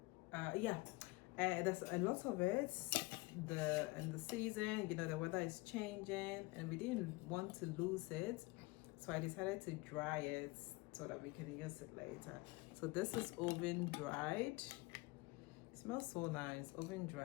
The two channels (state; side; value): quieter; right; 24.3 dB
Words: There's a lot of it. In the season, the weather is changing and we didn't want to lose it, so I decided to dry it so that we can use it later. So this is oven dried. It smells so nice. Oven